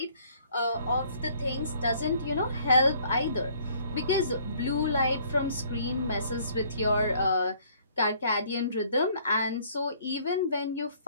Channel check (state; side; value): inverted; both; correlation -0.60